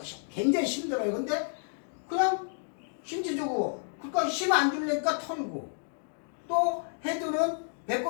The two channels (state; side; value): silent; right; digital silence